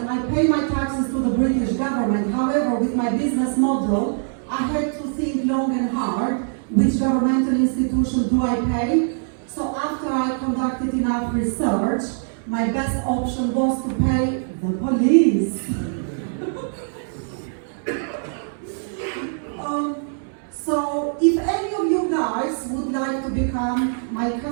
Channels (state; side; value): silent; left; 63 dB below the other